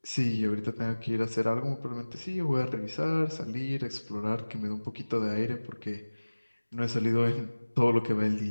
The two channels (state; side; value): inverted; both; correlation -1.00